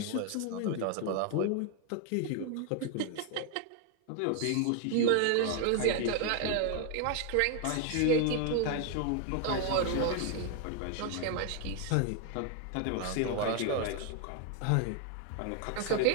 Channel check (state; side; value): different; both; correlation 0.00